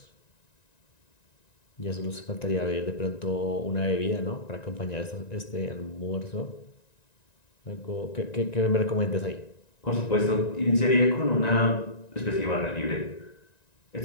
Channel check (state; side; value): late; right; 1.9 ms